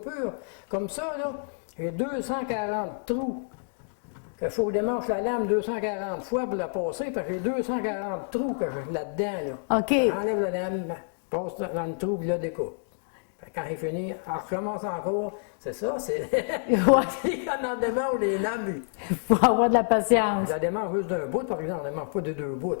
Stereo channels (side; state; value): right; silent; digital silence